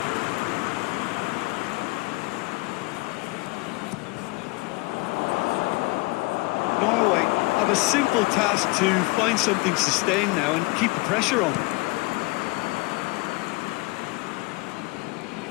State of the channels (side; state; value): right; quieter; 25.7 dB